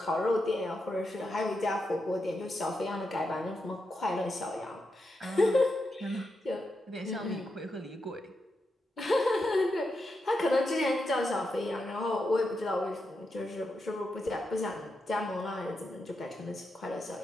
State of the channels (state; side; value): normal; both; correlation 0.86